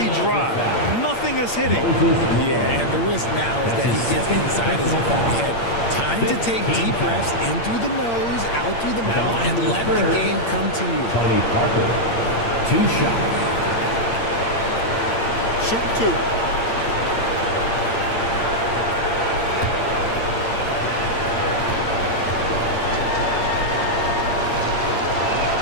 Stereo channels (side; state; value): right; late; 8.7 ms